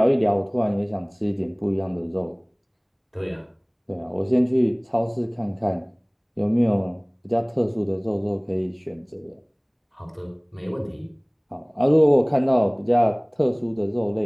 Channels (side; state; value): both; identical; correlation 1.00